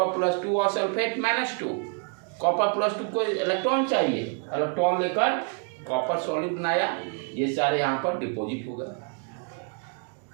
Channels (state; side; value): quieter; left; 39.5 dB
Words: +2 और सल्फेट -2, कॉपर +2 को इलेक्ट्रॉन चाहिए, इलेक्ट्रॉन लेकर कॉपर सॉलिड बनाया, ये सारे यहाँ पर डिपॉजिट हो गए।